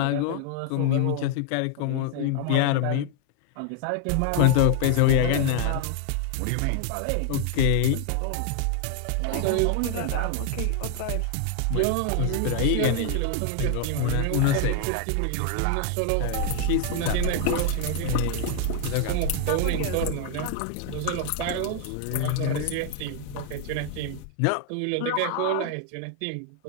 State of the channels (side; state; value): both; different; correlation 0.00